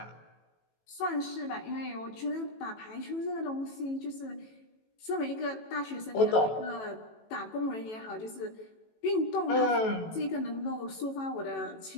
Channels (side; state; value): right; late; 18 ms